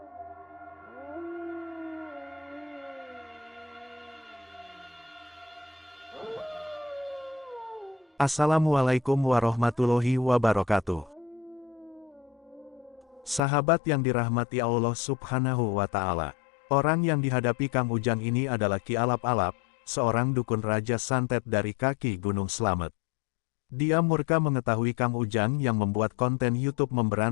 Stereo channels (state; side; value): drops out; right; at 13.4 s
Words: Assalamualaikum warahmatullahi wabarakatuh. Sahabat yang dirahmati Allah Subhanahu wa Ta'ala. Orang yang dihadapi Kang Ujang ini adalah Ki Alap-Alap, seorang dukun Raja Santet dari kaki Gunung Slamet. Dia murka mengetahui Kang Ujang yang membuat konten YouTube